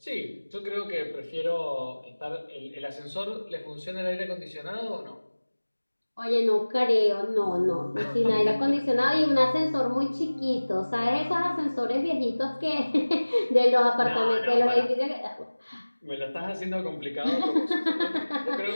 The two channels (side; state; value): both; inverted; correlation -1.00